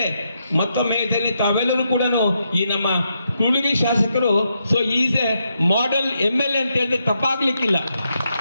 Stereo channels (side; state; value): both; inverted; correlation -0.81